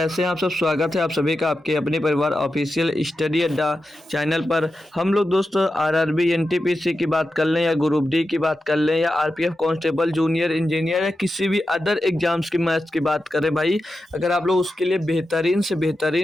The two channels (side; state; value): both; normal; correlation 0.90